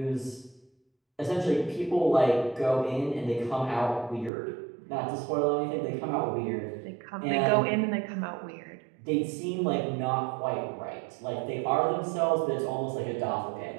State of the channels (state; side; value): drops out; left; at 4.3 s